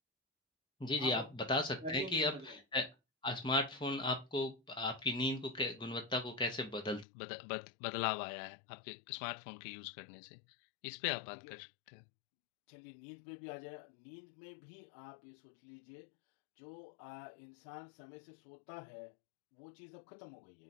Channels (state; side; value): drops out; right; at 7.1 s